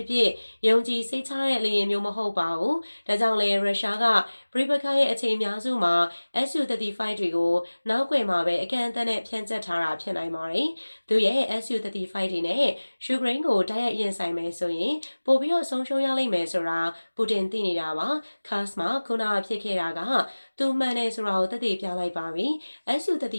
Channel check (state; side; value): inverted; both; correlation -1.00